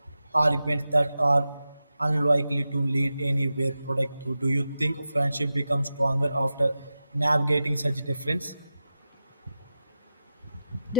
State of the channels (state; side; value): inverted; both; correlation -0.91